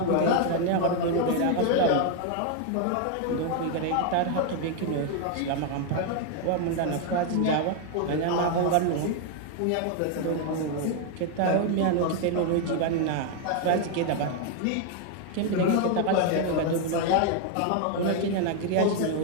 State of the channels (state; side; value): different; both; correlation 0.00